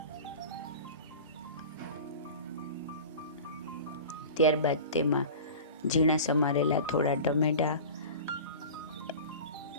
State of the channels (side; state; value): both; inverted; correlation -0.36